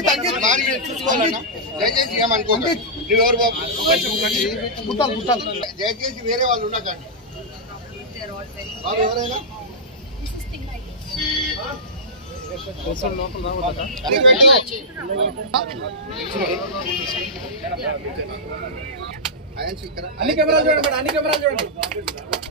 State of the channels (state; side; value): normal; both; correlation -0.12